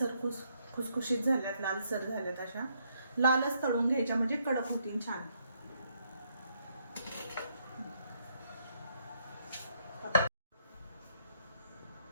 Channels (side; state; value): both; inverted; correlation -0.73